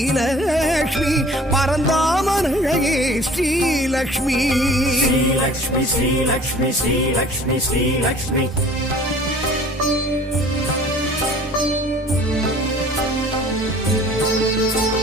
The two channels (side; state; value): both; normal; correlation 0.49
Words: பரந்தாமன் அழகே ஸ்ரீலக்ஷ்மி ஸ்ரீலக்ஷ்மி ஸ்ரீலக்ஷ்மி ஸ்ரீலக்ஷ்மி ஸ்ரீலக்ஷ்மி